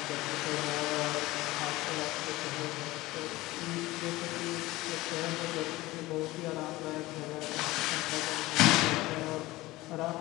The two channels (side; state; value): right; quieter; 19.0 dB